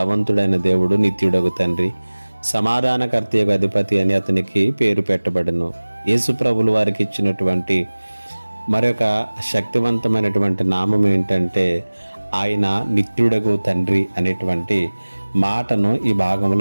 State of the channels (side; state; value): both; inverted; correlation -1.00